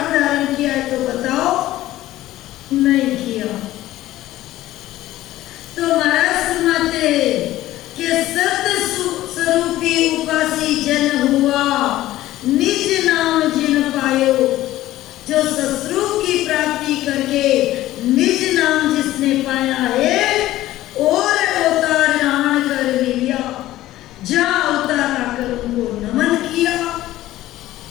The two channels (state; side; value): quieter; right; 15.3 dB